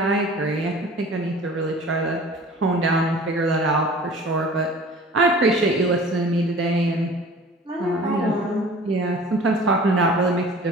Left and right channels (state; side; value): normal; both; correlation 0.45